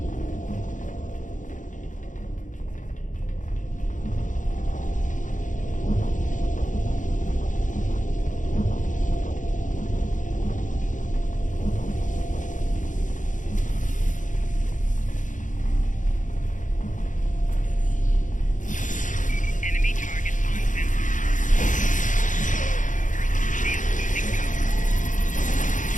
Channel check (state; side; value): late; right; 0.37 ms